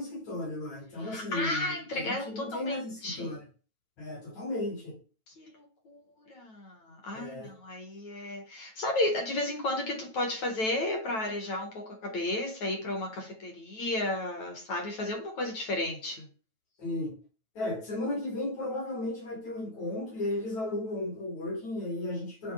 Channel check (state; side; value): late; right; 9.1 ms